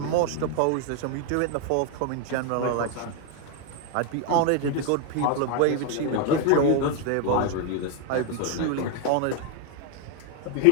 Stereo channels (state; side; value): different; both; correlation 0.01